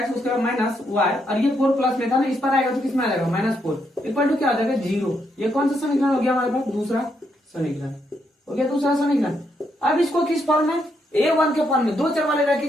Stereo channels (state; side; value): normal; both; correlation 0.78